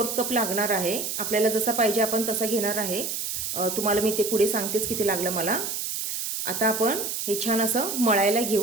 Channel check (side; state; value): right; noise; hiss, 3 dB below the sound